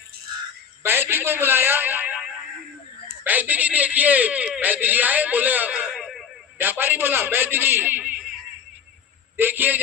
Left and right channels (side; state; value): right; quieter; 7.5 dB